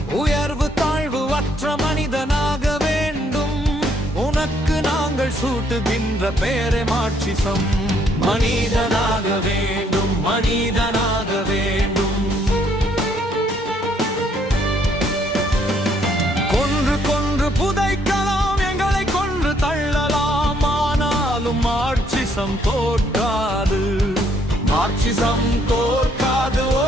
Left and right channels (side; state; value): both; normal; correlation 0.68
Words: உயர்வு தாழ்வு அற்ற மனிதனாக வேண்டும். உனக்கு நாங்கள் சூட்டுகின்ற பேரே மாட்சிசம். மனிதனாக வேண்டும், மனிதனாக வேண்டும். கொன்று கொன்று புதைக்கலாம், எங்களை கொன்று தள்ளலாம், ஆனாலும் மாட்சிசம் தோற்காது. மாட்சிசம் தோற்காது,